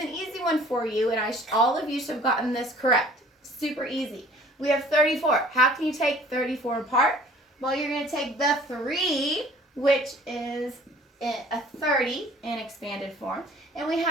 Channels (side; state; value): both; normal; correlation 0.51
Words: easy one for you, and all of you should have gotten this correct. Super easy. We have 34. How can you take 34 apart? Well, you're going to take the 3, which is a 30 in expanded form. And we